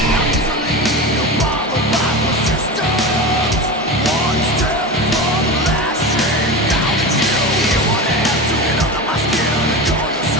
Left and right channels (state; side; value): normal; both; correlation 0.25